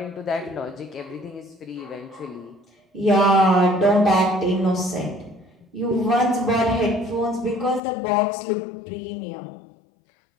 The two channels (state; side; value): drops out; right; at 7.8 s